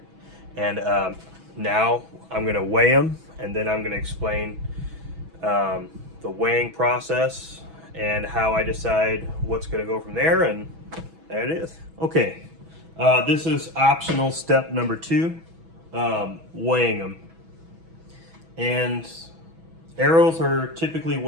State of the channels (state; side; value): late; left; 6.1 ms